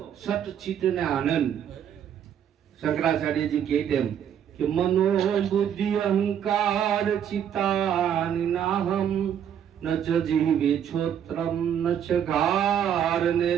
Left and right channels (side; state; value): left; quieter; 9.1 dB